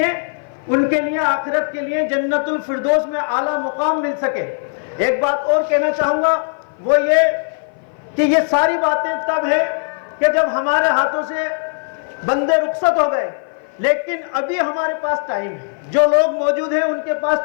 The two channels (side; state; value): right; silent; 56 dB below the other